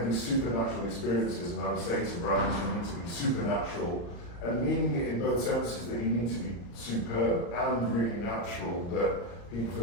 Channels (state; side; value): late; right; 34 ms